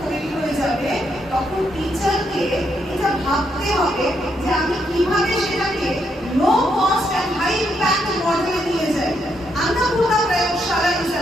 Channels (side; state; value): both; normal; correlation 0.77